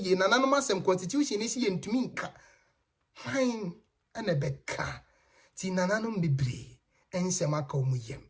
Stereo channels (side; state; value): both; identical; correlation 1.00